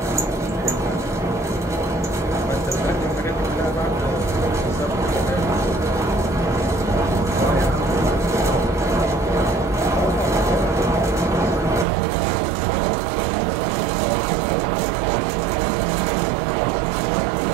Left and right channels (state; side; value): drops out; left; at 11.9 s